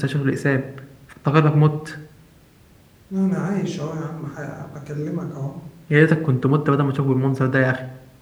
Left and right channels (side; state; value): both; identical; correlation 1.00